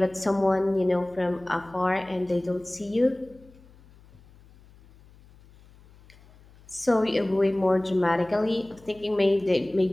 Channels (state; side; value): noise; left; hum, 26 dB below the sound